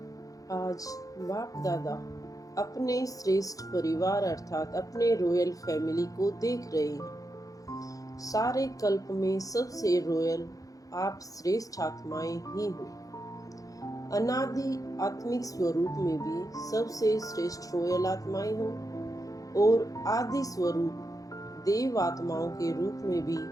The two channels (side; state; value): right; late; 0.17 ms